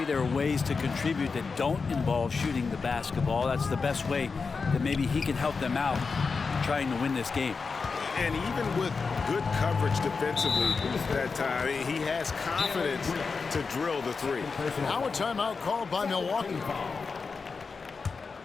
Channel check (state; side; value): quieter; right; 4.8 dB